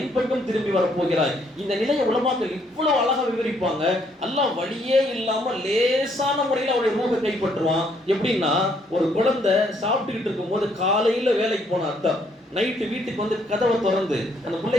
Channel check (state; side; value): normal; both; correlation 0.69